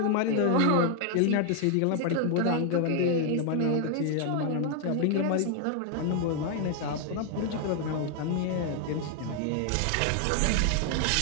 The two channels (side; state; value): both; different; correlation 0.00